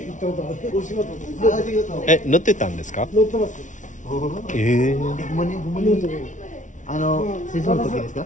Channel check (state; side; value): late; right; 0.37 ms